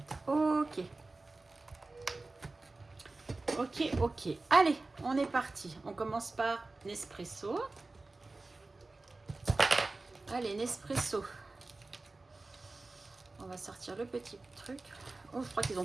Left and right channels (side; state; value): left; quieter; 3.3 dB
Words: OK. Ok, ok. Allez, on est parti. On commence par Nespresso. Allez, Nespresso. On va sortir le petit truc. Oh, je crois qu'ils